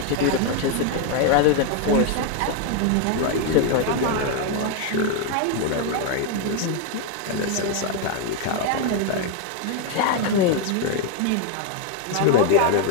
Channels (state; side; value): different; both; correlation 0.01